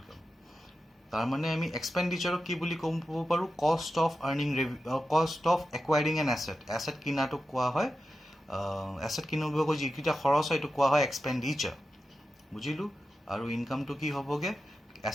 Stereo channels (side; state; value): both; normal; correlation 0.91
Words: তাৰমানে আমি এক্সপেণ্ডিচাৰক কি বুলি ক'ব পাৰোঁ? Cost of acquiring an asset. Asset কিনাটোক কোৱা হয়, এছেট কিনিবগৈ যিকেইটা খৰচ হয় এইটো কোৱা হয় এক্সপেণ্ডিচাৰ, বুজিলোঁ। আৰু ইনকামটো কি হ'বগৈ?